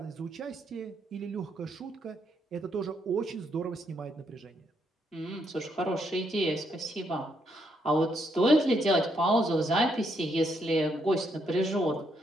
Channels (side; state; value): both; normal; correlation 0.76